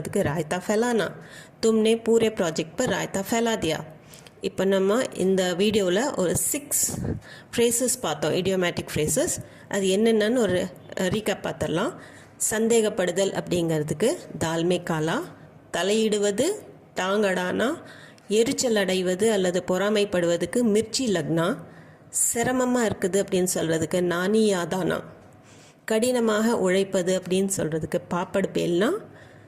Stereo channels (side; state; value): both; identical; correlation 1.00